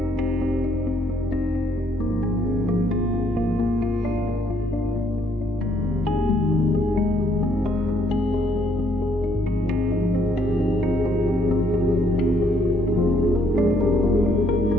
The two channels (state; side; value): normal; both; correlation 0.68